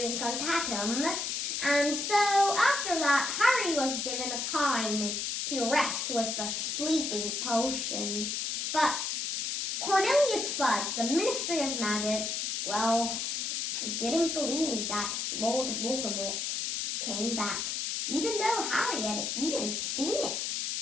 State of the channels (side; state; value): left; noise; hiss, 1 dB below the sound